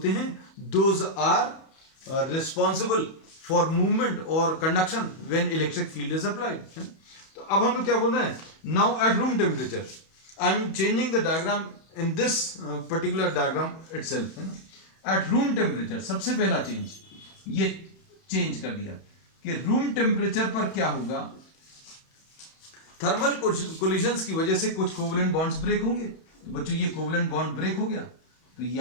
हैं those are responsible for movement और conduction when electric field is applied, है ना। तो अब हम लोग क्या बोल रहे हैं, now at room temperature, I am changing the diagram in this particular diagram itself, है ना। एट रूम टेम्परेचर सबसे पहला चेंज, ये चेंज कर दिया कि रूम टेम्परेचर पर क्या होगा, थर्मल कोलिजन्स की वजह से कुछ कोवेलेंट बॉन्ड्स ब्रेक होंगे। तो बच्चों ये कोवेलेंट बॉन्ड ब्रेक हो गया, तो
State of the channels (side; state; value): right; late; 31 ms